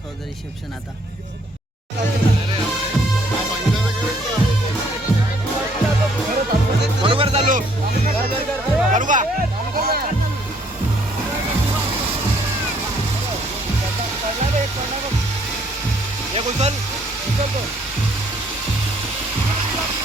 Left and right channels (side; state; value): both; normal; correlation 0.65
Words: रिसेप्शन आता. बरोबर चालू करू का? एक उचल